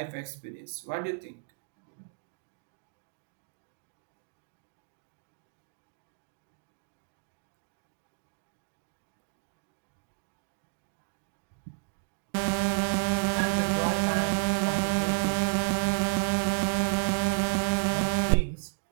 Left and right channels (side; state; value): left; silent; digital silence